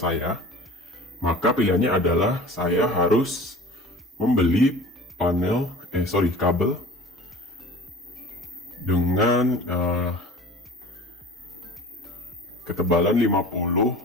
maka pilihannya adalah saya harus membeli kabel dengan ketebalan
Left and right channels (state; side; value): normal; both; correlation 0.42